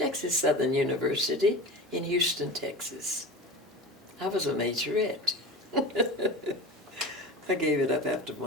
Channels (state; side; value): normal; both; correlation 0.31